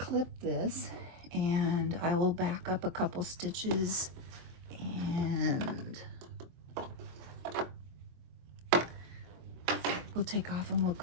this, and I will back a couple stitches, and we'll take off and we'll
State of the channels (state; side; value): late; left; 24 ms